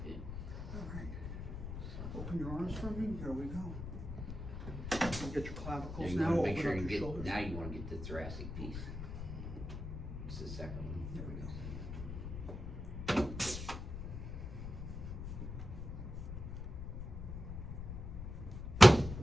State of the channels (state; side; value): noise; left; rumble, 7 dB below the sound